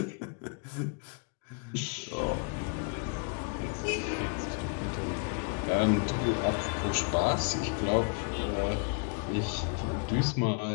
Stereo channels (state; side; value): quieter; right; 37.9 dB